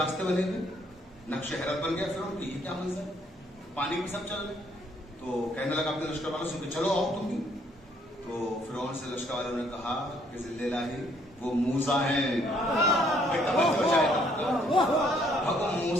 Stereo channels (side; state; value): both; normal; correlation 0.66